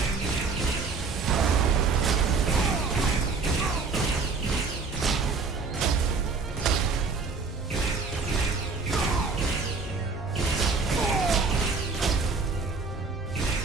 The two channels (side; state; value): left; quieter; 4.5 dB